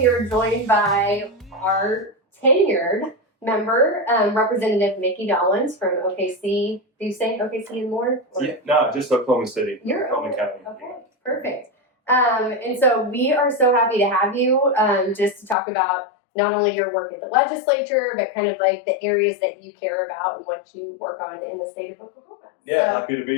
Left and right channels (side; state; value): right; drops out; at 15.6 s